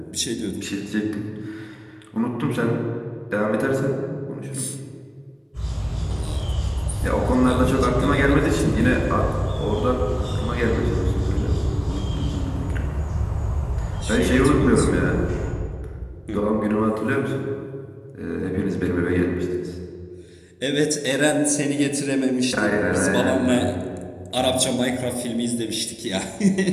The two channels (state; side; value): identical; both; correlation 1.00